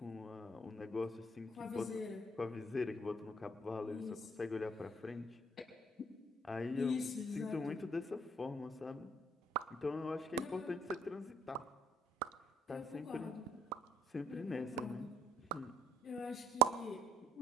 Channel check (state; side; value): normal; both; correlation 0.62